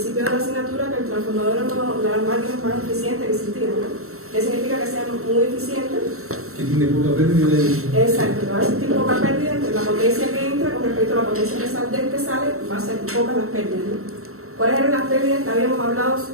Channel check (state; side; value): late; left; 0.63 ms